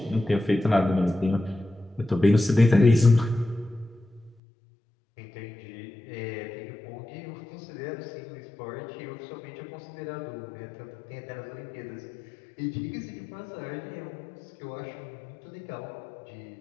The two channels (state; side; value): drops out; right; at 4.4 s